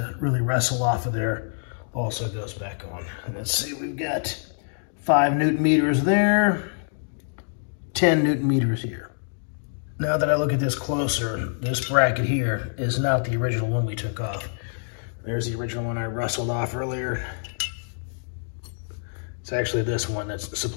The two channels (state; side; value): silent; right; digital silence